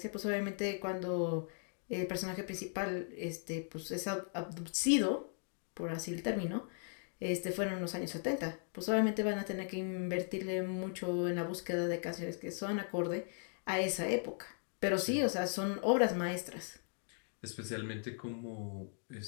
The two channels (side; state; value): right; silent; 52 dB below the other